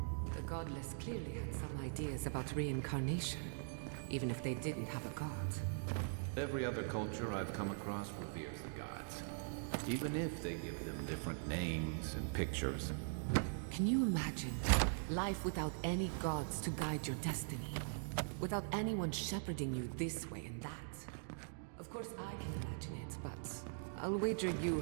The godless clearly had some ideas about reincarnation, even if they didn't have a god. Every other culture I've come across reveres the gods, even if they give them different names and pictures. Can you imagine life without any gods to guide your destiny? Without anyone shepherding you this way and that? Of course I can imagine it, but I'll wager you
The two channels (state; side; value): silent; left; digital silence